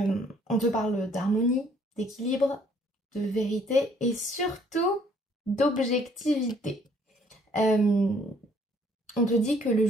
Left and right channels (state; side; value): normal; both; correlation 0.62